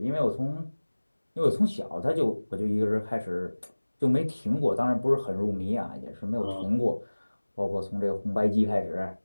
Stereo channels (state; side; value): inverted; both; correlation -1.00